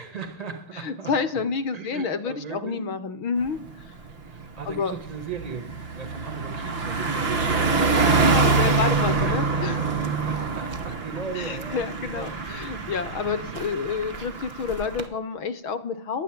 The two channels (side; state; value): right; late; 5.8 ms